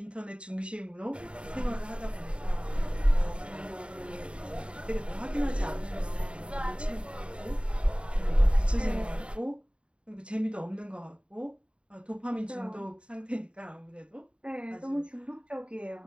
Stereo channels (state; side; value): late; left; 0.056 ms